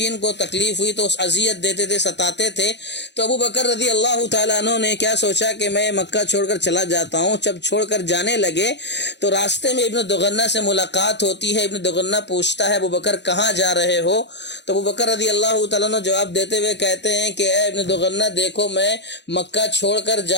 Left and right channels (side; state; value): right; late; 0.51 ms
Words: کو تکلیف ہوئی تو اذیت دیتے تھے، ستاتے تھے۔ تو ابو بکر رضی اللہ تعالیٰ عنہ نے کیا سوچا کہ میں مکہ چھوڑ کر چلا جاتا ہوں۔ جب چھوڑ کر جانے لگے تو راستے میں ابن دغنہ سے ملاقات ہوتی ہے۔ ابن دغنہ پوچھتا ہے ابو بکر کہاں جا رہے ہو؟ تو ابو بکر رضی اللہ تعالیٰ عنہ جواب دیتے ہوئے کہتے ہیں کہ اے ابن دغنہ دیکھو، میں مکہ چھوڑ کر